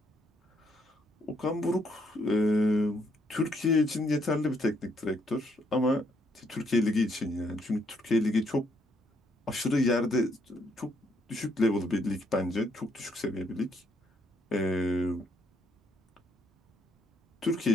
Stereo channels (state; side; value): normal; both; correlation 0.72